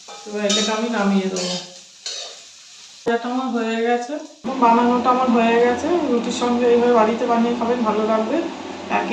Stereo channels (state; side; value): identical; both; correlation 1.00